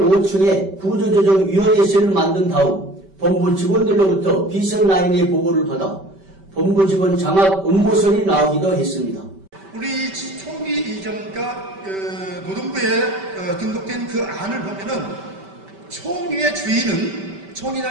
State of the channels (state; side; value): late; left; 5.2 ms